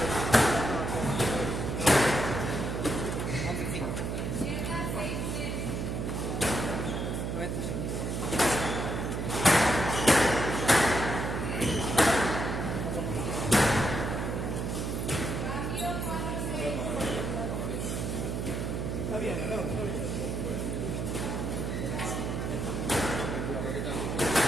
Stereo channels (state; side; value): noise; right; hum, 2 dB below the sound